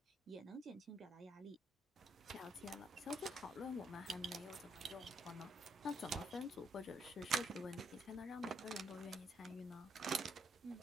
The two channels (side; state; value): both; normal; correlation 0.74